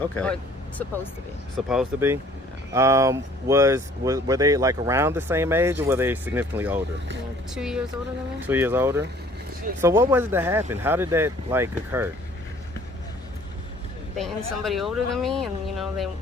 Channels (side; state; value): both; normal; correlation 0.55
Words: Or supposed to be. Supposed to be? Were they like around the same age, or were they significantly older? 2 years older than me. 2 years older? So what was it that happened? How did that like occur? Dating somebody older than me, and you know they